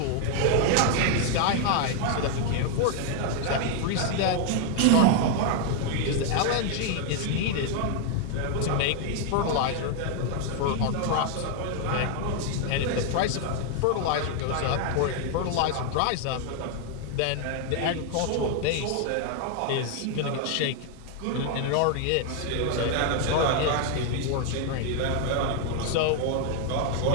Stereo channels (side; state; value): both; different; correlation 0.00